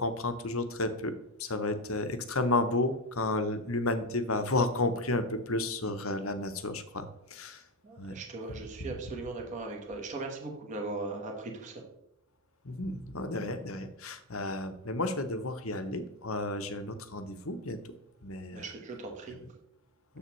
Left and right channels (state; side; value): normal; both; correlation 0.09